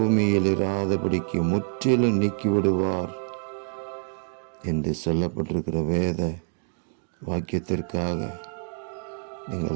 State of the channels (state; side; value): silent; left; 55 dB below the other